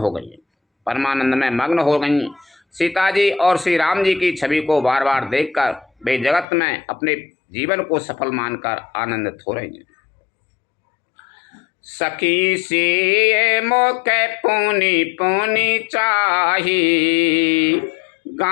गई। परमानंद में मग्न हो गईं। सीता जी और श्री राम जी की छवि को बार बार देखकर वे जगत में अपने जीवन को सफल मानकर आनंदित हो रही हैं। सखी से मोके पुनि पुनि चाही,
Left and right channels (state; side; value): drops out; right; at 6.5 s